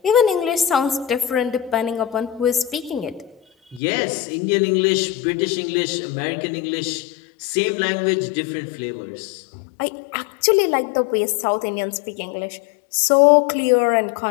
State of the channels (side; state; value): right; drops out; at 3.8 s